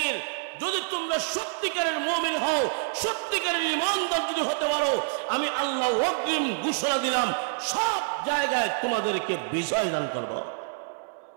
যদি তোমরা সত্যিকারের মুমিন হও, সত্যিকারের ঈমানদার যদি হতে পারো, আমি আল্লাহ ওয়াকিম ঘোষণা দিলাম সব জায়গায় তোমাদেরকে বিজয় দান করব।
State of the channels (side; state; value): left; silent; digital silence